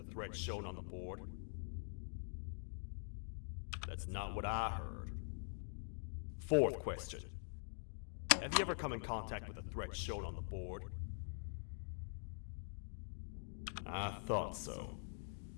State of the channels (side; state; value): right; silent; digital silence